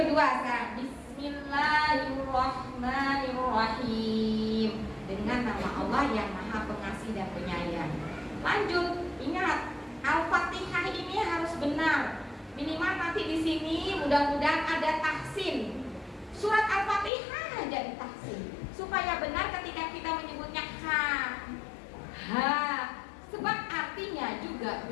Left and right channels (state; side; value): drops out; right; at 17.1 s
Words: sekarang, Bismillahirrahmanirrahim, dengan nama Allah yang Maha Pengasih dan Penyayang. Lanjut, ingat Al-Fatihah ini harus benar. Minimal nanti di sini mudah-mudahan ada tahsin. Surat Al-Fatihah aja ditahsin. supaya benar ketika kita menyebutnya ha, sebab artinya juga